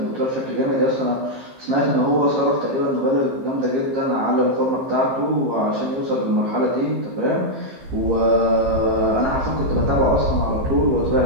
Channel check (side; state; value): left; late; 15 ms